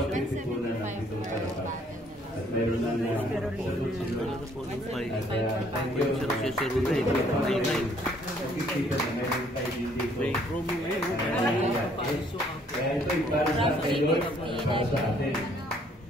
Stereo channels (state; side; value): normal; both; correlation 0.63